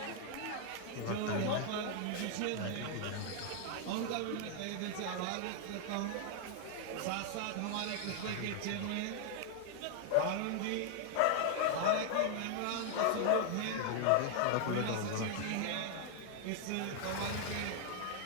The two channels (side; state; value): both; different; correlation 0.00